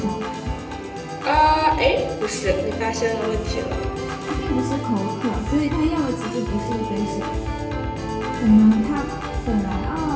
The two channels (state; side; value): identical; both; correlation 1.00